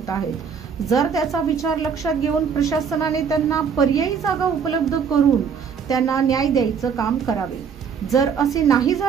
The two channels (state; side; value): quieter; left; 6.6 dB